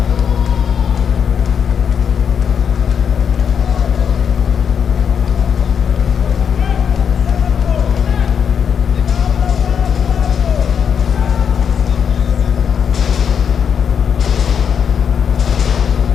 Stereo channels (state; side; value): quieter; right; 7.3 dB